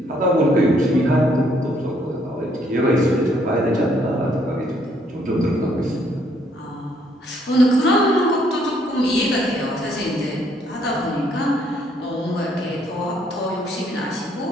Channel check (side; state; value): both; normal; correlation 0.68